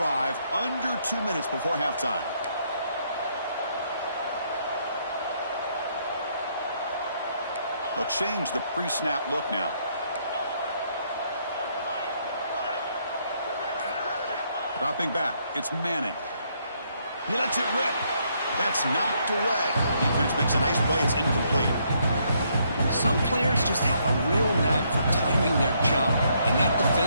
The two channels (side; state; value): both; inverted; correlation -0.72